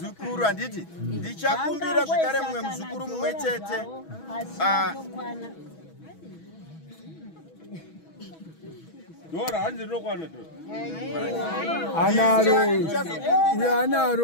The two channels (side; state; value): right; late; 6.2 ms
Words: handiti ndichakumbira zvakare mumwe muzukuru mumwe chete Dora hanzi rokwana to.